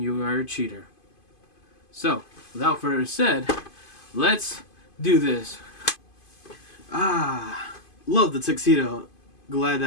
you are a cheater. So, without further said, let's do this. Love the tuxedo. Glad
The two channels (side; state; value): right; late; 2.5 ms